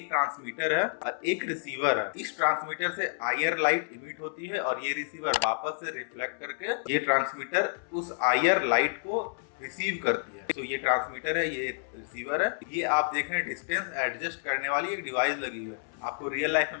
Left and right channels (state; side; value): silent; right; 58 dB below the other